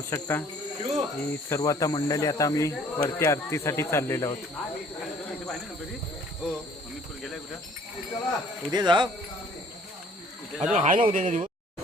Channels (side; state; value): both; normal; correlation 0.56